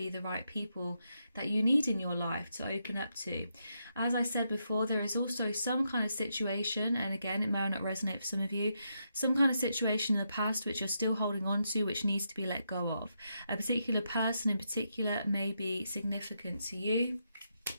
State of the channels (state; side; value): inverted; both; correlation -0.82